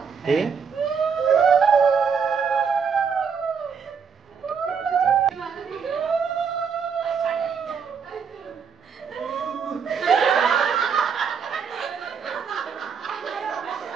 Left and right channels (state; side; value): quieter; left; 6.3 dB